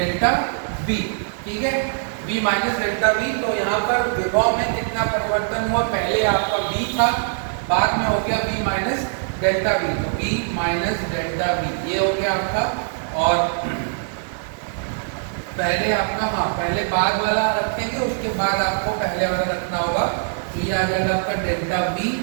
B। ठीक है, B माइनस डेल्टा B। तो यहाँ पर विभव में कितना परिवर्तन हुआ, पहले आपका B था, बाद में हो गया B माइनस डेल्टा बी, तो B माइनस डेल्टा बी ये हो गया आपका। और पहले आपका, हाँ पहले बाद वाला रखेंगे, उसके बाद आपको पहले वाला रखना होगा, तो ये आ जाएगा आपका डेल्टा बी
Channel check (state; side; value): silent; left; 64 dB below the other